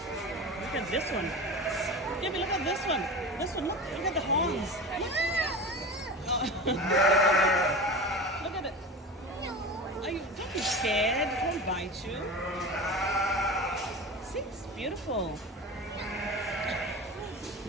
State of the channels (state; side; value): normal; both; correlation 0.31